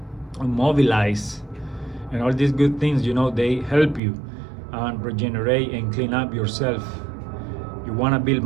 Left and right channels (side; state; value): left; drops out; at 4.0 s